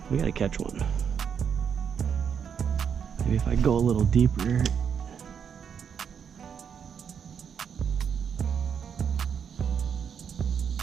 We gotta catch one. Maybe if I go a little deeper.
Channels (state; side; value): quieter; left; 7.4 dB